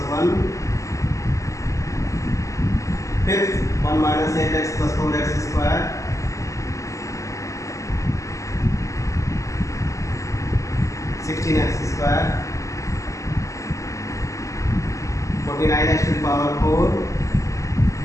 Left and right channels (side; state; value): right; late; 0.16 ms